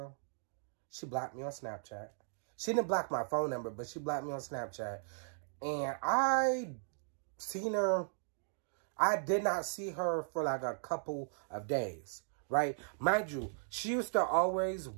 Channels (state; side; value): silent; left; digital silence